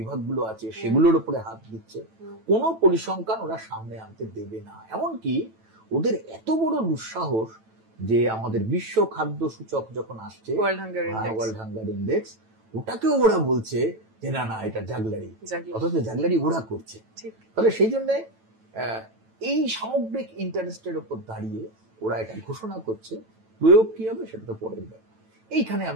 আছে সেগুলোর উপরে হাত দিচ্ছে। কোনো পরিসংখ্যান ওরা সামনে আনতে দেবে না। এমনকি ওদের এত বড় দুঃসাহস যে আমাদের বিশ্ব খাদ্য সূচক যখন আসছে, ওয়ার্ল্ড হাঙ্গার ইন্ডেক্স, ওটাকেও ওরা বলছে যে না না এটা জাগলারি, অথচ জাগলারি ওরা করছে। তাহলে সেই জন্য এই সামগ্রিক ইন্টারেস্টের উপর দাঁড়িয়ে ওরা এটা ঘোষণা করছে। প্রয়োগ কি হবে সেটা তো পরের ব্যাপার। এইখানে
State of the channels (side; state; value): left; late; 9.1 ms